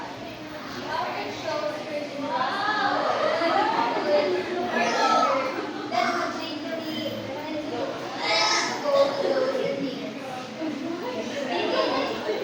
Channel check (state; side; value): identical; both; correlation 1.00